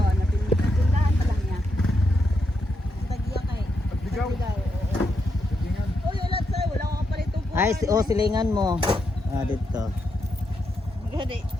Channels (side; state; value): both; normal; correlation 0.82